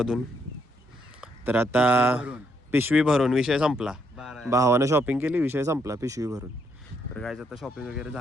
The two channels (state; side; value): normal; both; correlation 0.74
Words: तर आता पिशवी भरून विषय संपला. भावानं शॉपिंग केली, विषय संपला पिशवी भरून. तर काय आता शॉपिंग वगैरे